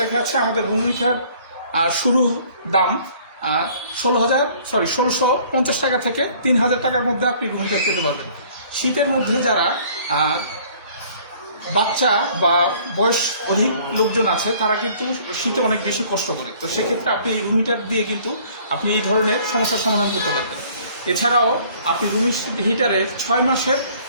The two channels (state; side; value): inverted; both; correlation -0.55